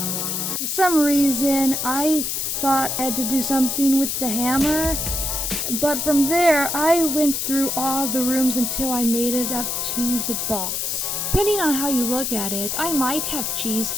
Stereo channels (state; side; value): noise; left; hiss, 1 dB below the sound